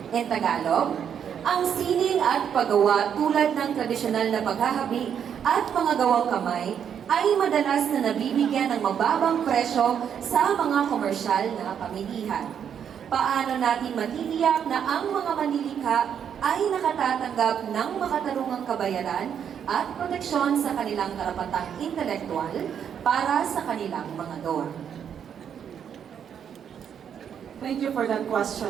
In Tagalog, ang sining at paggawa tulad ng tradisyonal na paghahabi at mga gawang kamay ay madalas na nabibigyan ng mababang presyo sa mga komersyal na pamilihan. Paano natin matitiyak na ang mga manlilikha ay nakatatanggap ng makatarungang kabayaran at proteksyon sa kanilang karapatang intelektual para sa kanilang mga gawa? Thank you for that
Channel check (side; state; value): left; quieter; 8.3 dB